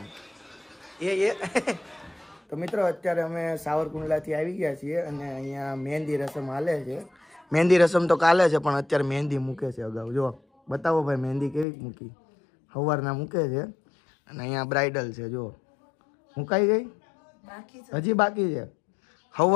એ તો મિત્રો અત્યારે અમે સાવરકુંડલાથી આવી ગયા છીએ અને અહીંયા મહેંદી રસમ હાલે છે. મહેંદી રસમ તો કાલે છે પણ અત્યારે મહેંદી મૂકે છે અગાઉ. જો બતાવો ભાઈ મહેંદી કેવી મૂકી, સવારના મૂકે છે. અને અહીંયા બ્રાઇડલ છે. જો મુકાઈ ગઈ? હજી બાકી છે,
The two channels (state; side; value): drops out; right; at 11.7 s